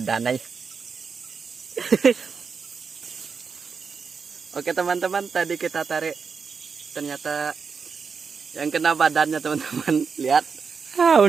aja. Oke teman-teman, tadi kita tarik, ternyata yang kena badannya teman-teman. Lihat,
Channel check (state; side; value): quieter; left; 5.6 dB